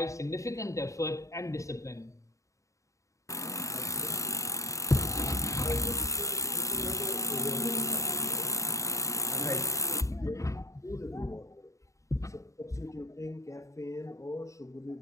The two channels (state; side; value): late; right; 0.15 ms